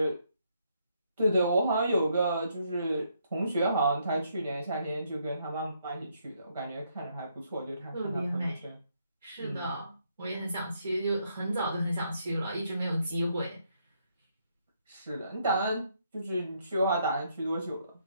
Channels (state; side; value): inverted; both; correlation -0.73